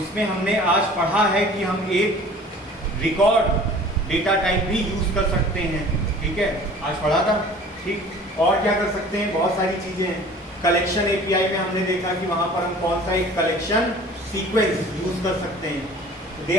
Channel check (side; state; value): both; normal; correlation 0.46